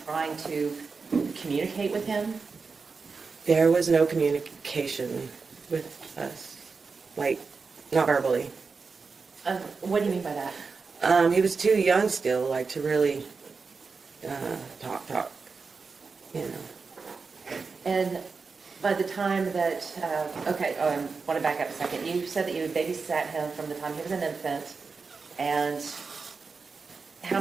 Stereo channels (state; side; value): quieter; left; 4.7 dB